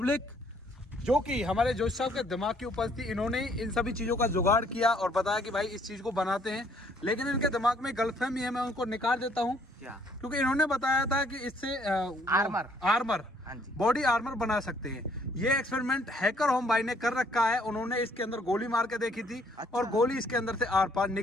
जो कि हमारे जोशी साहब के दिमाग की उपज थी। इन्होंने इन सभी चीज़ों का जुगाड़ किया और बताया कि भाई इस चीज़ को बनाते हैं, लेकिन इनके दिमाग में गलतफहमी है, मैं उनको निकाल देता हूँ। क्योंकि इन्होंने बताया था कि इससे आर्मर बॉडी आर्मर बना सकते हैं। ये एक्सपेरिमेंट हैकर होम भाई ने कर रखा है। उन्होंने इसके अंदर गोली मार के देखी थी। अच्छा। और गोली इसके अंदर से आर पार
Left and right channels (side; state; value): both; normal; correlation 0.64